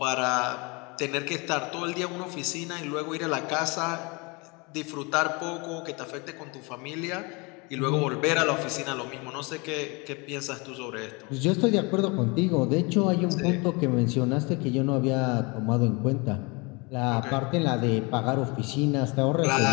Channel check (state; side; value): quieter; right; 28.4 dB